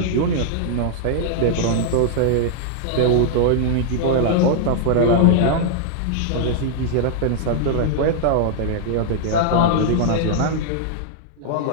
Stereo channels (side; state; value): both; different; correlation -0.01